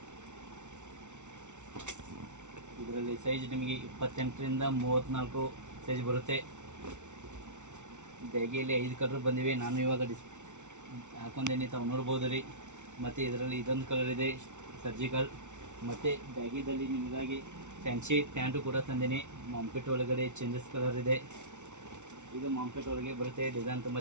ಇದರಲ್ಲಿ ಸೈಜ್ ನಿಮಗೆ 28ರಿಂದ 34 ಸೈಜ್ ಬರುತ್ತೆ. ಬ್ಯಾಗಿಯಲ್ಲಿ 5 ಕಲರ್ ಬಂದಿವೆ. ನಾನು ಇವಾಗ ಹಾಕೊಂಡೇನೆ, ತಾವು ನೋಡ್ಬೋದು ರೀ. ಮತ್ತು ಇದರಲ್ಲಿ ಇದೊಂದು ಕಲರ್ ಇದೆ ಸರ್ಜಿಕಲ್. ಮತ್ತು ಬ್ಯಾಗಿದಲ್ಲಿ ನಿಮಗಾಗಿ ಫ್ಯಾನ್ಸಿ ಪ್ಯಾಂಟು ಕೂಡ ತಂದೇನೆ. ಮಾಂಪೆಟ್ ಒಳಗಡೆ ಚೇಂಜಸ್ ಕಲರ್ ಇದೆ. ಇದು ಮಾಂಪೆಟ್ ಒಳಗೆ ಬರುತ್ತೆ. ಡಿಸೈನ್ ತುಂಬ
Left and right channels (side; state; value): left; late; 0.84 ms